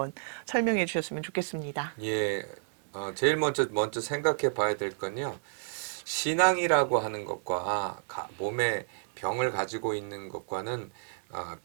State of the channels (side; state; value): left; silent; digital silence